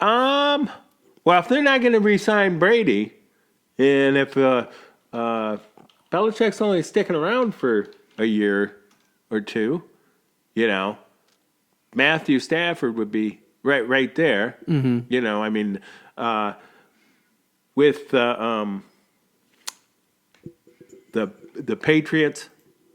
if they're not going to re-sign Brady, and if Belichick's only sticking around for a year or two, Matthew Stafford would be right there. Mm-hmm. I mean, with the Patriots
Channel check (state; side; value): identical; both; correlation 1.00